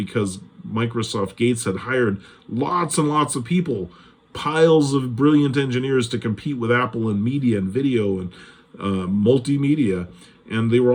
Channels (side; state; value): both; identical; correlation 1.00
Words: Microsoft Gates had hired lots and lots of people, piles of brilliant engineers to compete with Apple in media and video and multimedia. And they were